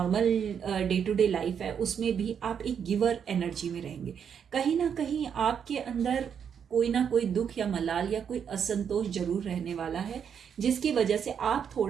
day to day life है, उसमें भी आप एक गिवर एनर्जी में रहेंगे. कहीं ना कहीं आपके अंदर कोई ना कोई दुख या मलाल या कोई असंतोष जरूर रहने वाला है, जिसकी वजह से आप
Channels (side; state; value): left; quieter; 7.7 dB